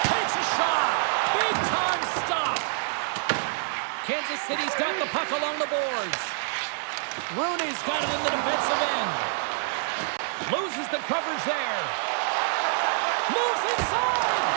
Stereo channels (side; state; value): left; silent; 60 dB below the other